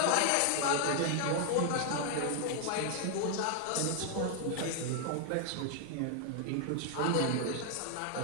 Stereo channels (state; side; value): different; both; correlation 0.00